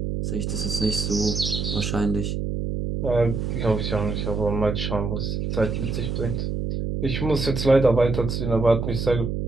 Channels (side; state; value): right; noise; hum, 2 dB below the sound